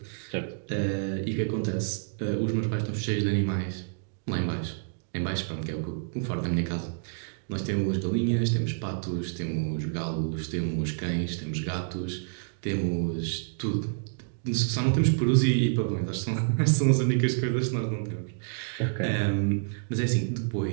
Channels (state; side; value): silent; left; digital silence